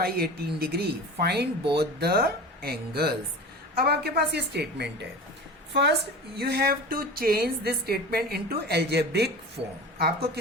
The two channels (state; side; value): normal; both; correlation 0.34